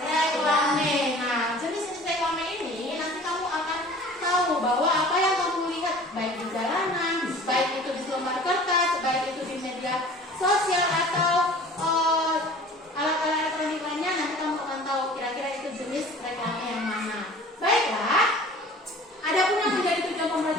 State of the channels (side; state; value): both; normal; correlation 0.45